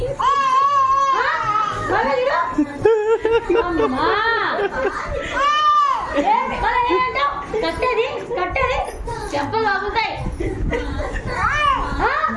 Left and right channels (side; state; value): both; identical; correlation 1.00